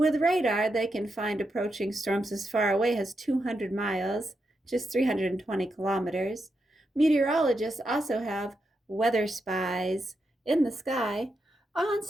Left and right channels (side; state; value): both; normal; correlation 0.85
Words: radar, they can find approaching storms as far away as 200 miles, just 320 kilometers. Meteorologists also have weather spies in the sky.